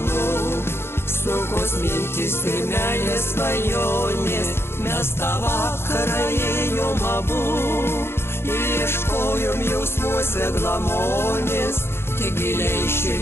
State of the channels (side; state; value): right; late; 0.12 ms